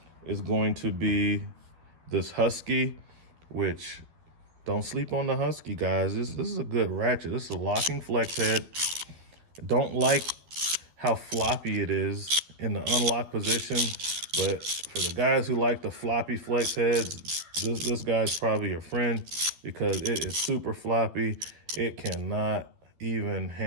is going to be this Husky, which don't sleep on the Husky, guys. This is a good ratchet. This is a locking flex head. Don't like how floppy it is in the unlock position, but for the guys who like the floppy flex heads, this guy's probably your friend because it is super floppy. It cannot even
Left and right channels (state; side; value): late; left; 12 ms